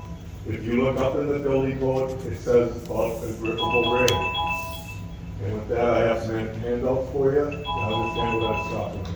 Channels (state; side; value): identical; both; correlation 1.00